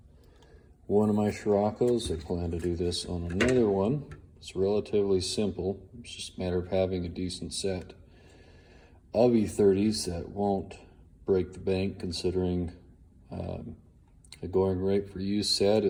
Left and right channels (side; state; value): both; identical; correlation 1.00